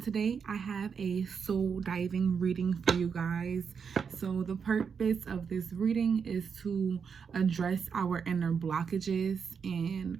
Today I have a soul diving reading for you guys. So the purpose of this reading is to address our inner blockages and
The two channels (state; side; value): quieter; left; 6.3 dB